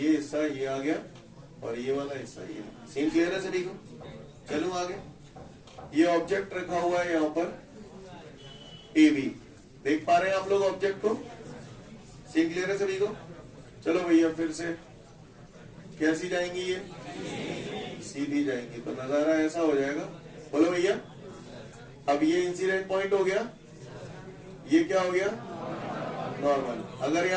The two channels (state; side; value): identical; both; correlation 1.00